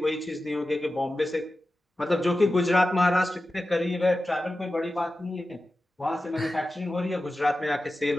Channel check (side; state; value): both; normal; correlation 0.94